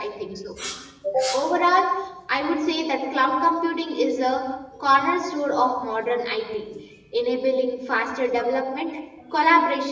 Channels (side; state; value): both; identical; correlation 1.00